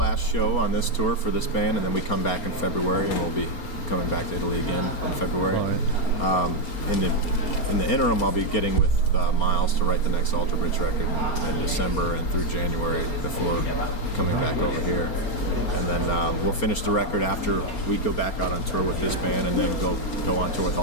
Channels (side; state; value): right; late; 4.3 ms